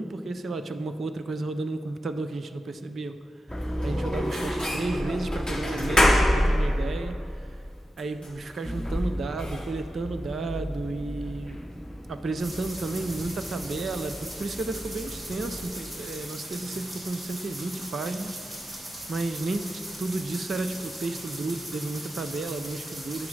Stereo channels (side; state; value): both; normal; correlation 0.90